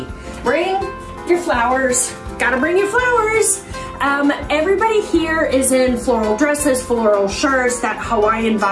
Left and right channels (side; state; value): both; identical; correlation 1.00